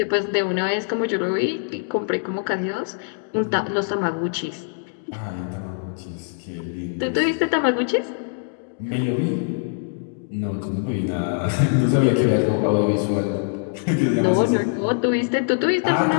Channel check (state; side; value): silent; right; 62 dB below the other